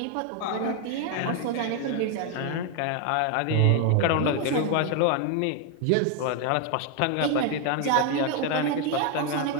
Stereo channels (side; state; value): both; different; correlation 0.01